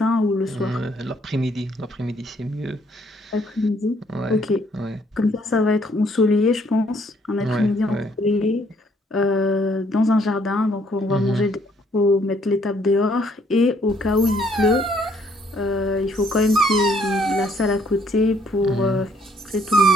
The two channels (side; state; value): both; normal; correlation 0.66